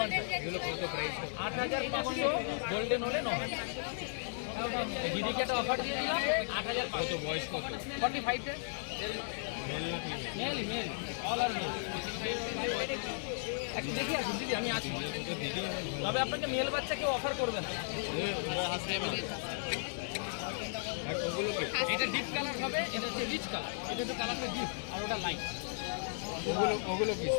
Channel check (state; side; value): silent; right; digital silence